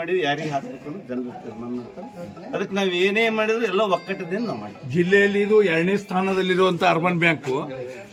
ಯಾರಿಗೆ ಹಾಕ್ಬೇಕು ಅನ್ನೋದು ಜನರು ತೀರ್ಮಾನ ಮಾಡ್ತಾರೆ. ಅದಕ್ಕೆ ನಾವು ಏನೇ ಮಾಡಿದ್ರು ಎಲ್ಲ ಒಕ್ಕಟ್ಟದಿಂದ ನಾವು ಮಾಡಿ. ಜಿಲ್ಲೆಯಲ್ಲಿ ಇದು 2ನೇ ಸ್ಥಾನದಲ್ಲಿರುವಂತ ಅರ್ಬನ್ ಬ್ಯಾಂಕು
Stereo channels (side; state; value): both; identical; correlation 1.00